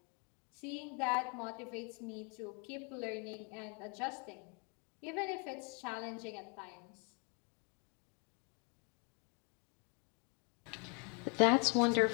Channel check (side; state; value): right; quieter; 34.7 dB